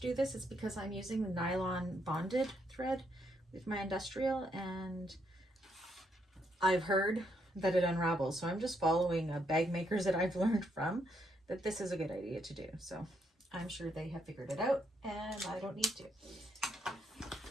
this. It's because I'm using the nylon bonded thread with my industrial, and I've heard that it unravels. So I'm just following bag makers that I've learned from that this is a good idea to do. So I'm sure they have figured it out and I don't need to.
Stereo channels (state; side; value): normal; both; correlation 0.76